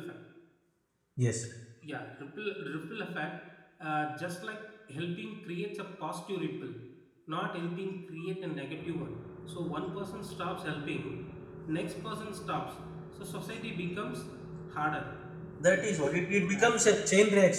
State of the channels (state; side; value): identical; both; correlation 1.00